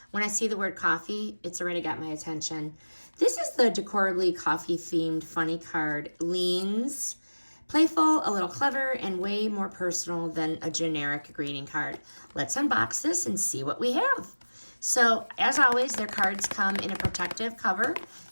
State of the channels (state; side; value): inverted; both; correlation -1.00